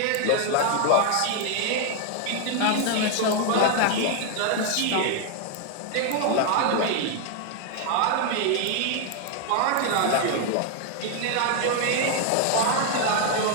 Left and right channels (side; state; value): both; different; correlation 0.00